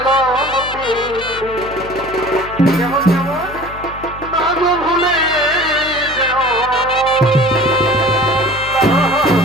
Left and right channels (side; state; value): left; noise; hum, 16 dB below the sound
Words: যেমন যেমন না গো ভুলে যেও